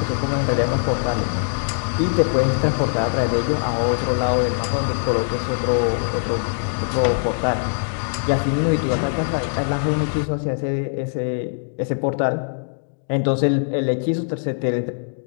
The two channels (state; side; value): silent; right; digital silence